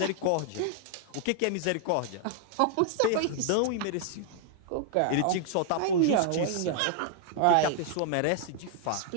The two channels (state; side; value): different; both; correlation 0.00